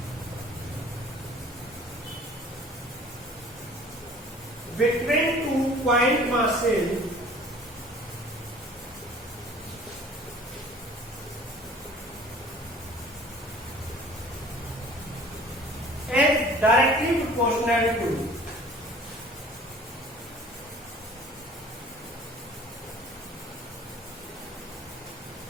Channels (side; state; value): both; normal; correlation 0.49